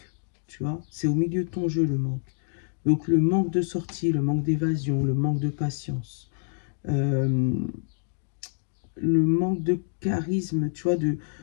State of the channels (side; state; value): right; silent; digital silence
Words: tu vois, c'est au milieu de ton jeu le manque. Donc le manque de sortie, le manque d'évasion, le manque de patience, le manque de charisme, tu vois,